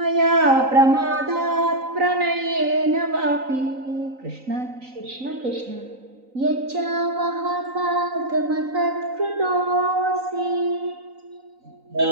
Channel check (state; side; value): late; left; 3.9 ms